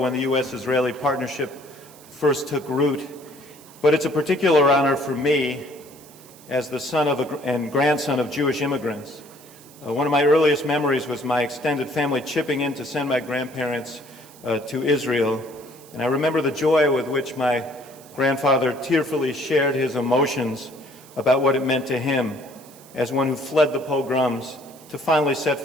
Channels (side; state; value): right; noise; hiss, 22 dB below the sound